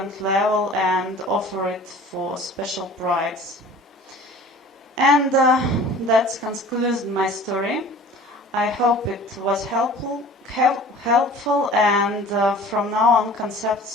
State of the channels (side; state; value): both; normal; correlation 0.45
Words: level and offer it for special price. And that concludes my story. I hope it was helpful, and from now on,